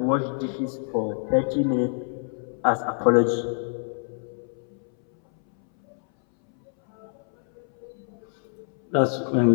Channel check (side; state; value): right; silent; 61 dB below the other